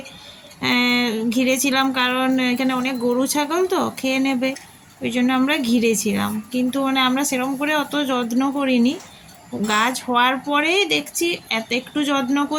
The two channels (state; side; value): identical; both; correlation 1.00